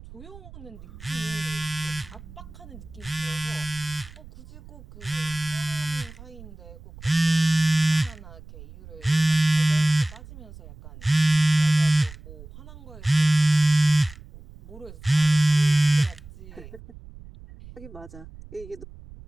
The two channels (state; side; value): noise; right; rumble, 18 dB below the sound